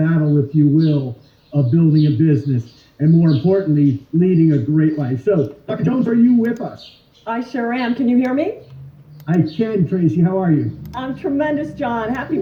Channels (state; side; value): identical; both; correlation 1.00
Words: if you will, of building a business, and more importantly, leading a great life. So, Dr. Jones, are you with us? I sure am. Can you hear me? I can, Tracy. How are you? I'm tremendous, John. Happy